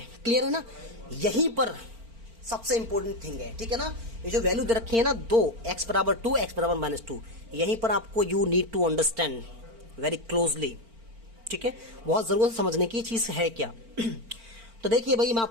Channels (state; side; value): late; left; 4.4 ms